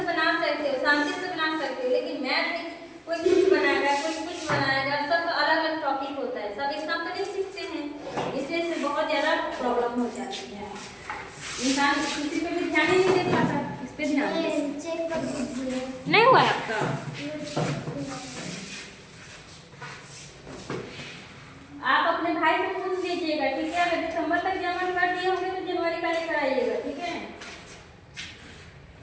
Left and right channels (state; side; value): identical; both; correlation 1.00